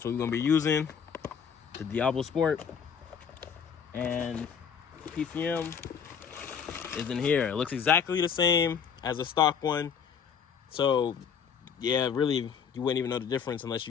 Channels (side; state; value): right; quieter; 7.1 dB